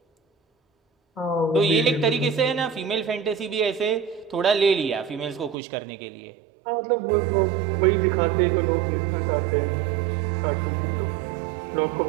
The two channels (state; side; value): drops out; left; at 5.6 s